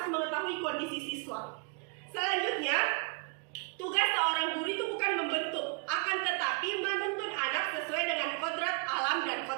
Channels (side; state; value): left; quieter; 36.6 dB